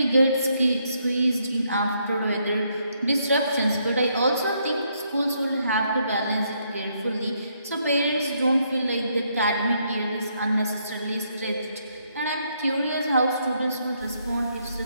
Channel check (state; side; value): inverted; both; correlation -0.74